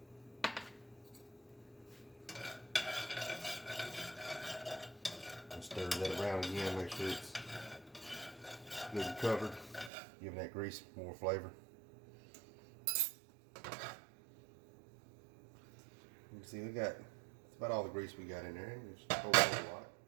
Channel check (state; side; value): drops out; left; at 9.9 s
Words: And stir that around again, make sure it's good and covered, giving that grease more flavor. You can see that's about all the grease we got in there. Just a whole lot.